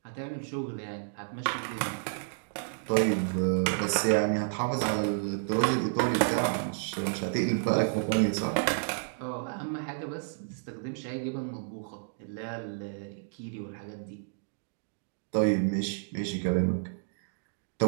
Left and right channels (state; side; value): silent; left; digital silence